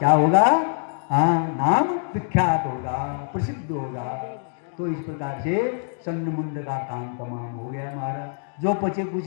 होगा, हाँ नाम विख्यात होगा, प्रसिद्ध होगा। तो इस प्रकार से संगमुंड का काम तमाम हो गया महाराज। जो बचे कुछ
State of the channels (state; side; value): silent; right; 62 dB below the other